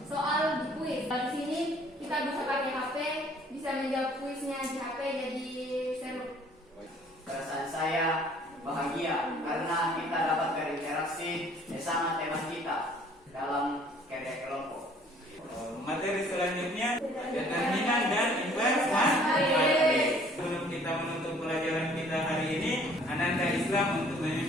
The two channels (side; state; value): both; normal; correlation 0.56